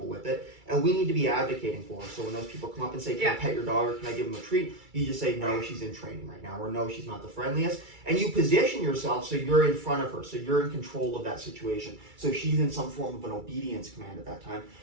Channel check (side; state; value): left; late; 2.3 ms